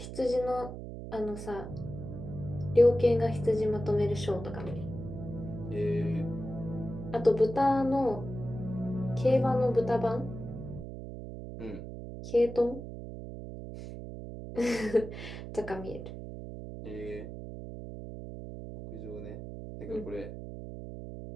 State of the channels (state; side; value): noise; right; hum, 9 dB below the sound